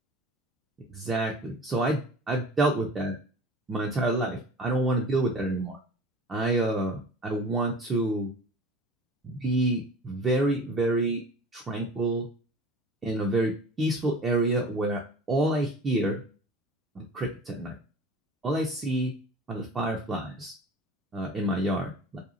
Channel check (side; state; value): both; normal; correlation 0.40